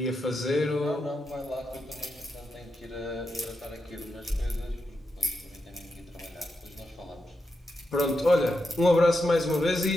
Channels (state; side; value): normal; both; correlation 0.87